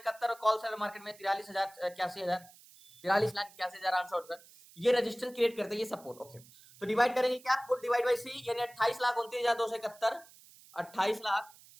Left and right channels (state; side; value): noise; right; hiss, 23 dB below the sound